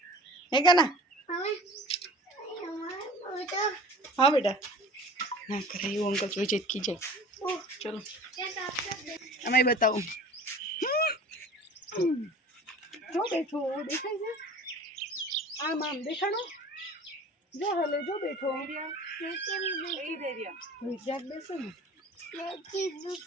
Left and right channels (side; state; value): both; normal; correlation 0.42